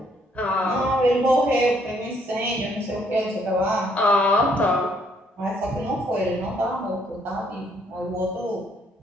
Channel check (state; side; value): normal; both; correlation 0.68